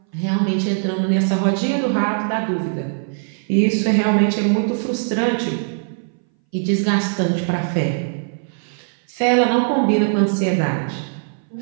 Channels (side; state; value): left; silent; 61 dB below the other